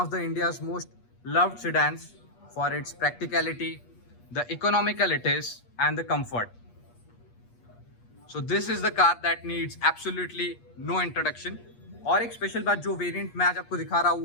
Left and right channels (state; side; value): late; right; 8.4 ms